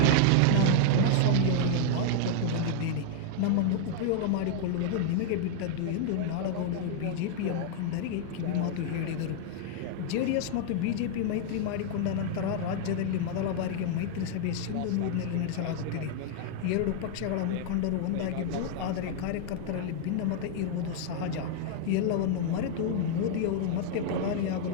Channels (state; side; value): different; both; correlation -0.01